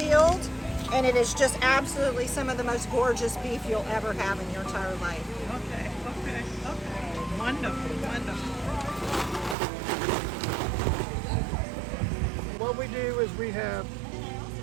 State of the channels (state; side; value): drops out; left; at 9.6 s